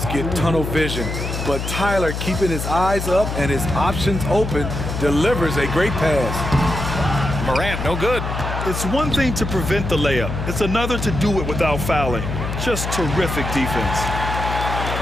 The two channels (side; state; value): left; noise; hum, 4 dB below the sound